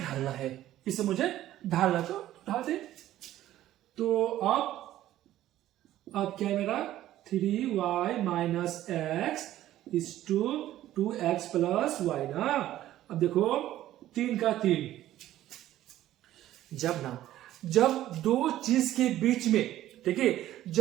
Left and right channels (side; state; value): left; quieter; 13.6 dB